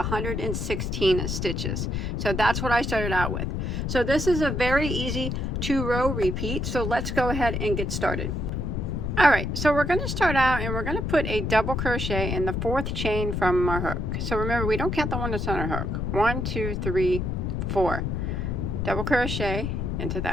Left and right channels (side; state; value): left; noise; rumble, 1 dB below the sound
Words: stitches. So that's what I started out with. So this is a very easy 2-row repeat. So let's go ahead and get started. All right, so we're going to start out and we're going to put a double crochet in the 4th chain from our hook. So remember, we don't count the one that's on our hook. 1 2 3 4. Double crochet into